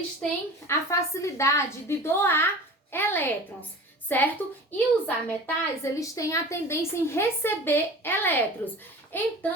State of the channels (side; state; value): both; normal; correlation 0.38